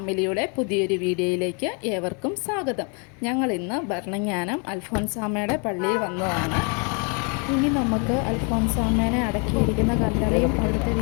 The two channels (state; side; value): quieter; right; 36.3 dB